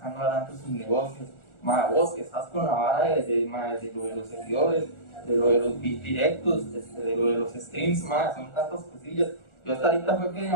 adelante sus negocios. Vos que estás con la vara de lo de los seguidores, de lo de los directos, de lo de los streams, son tantas cosillas. Yo hasta ahorita fue que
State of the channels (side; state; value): right; late; 1.4 ms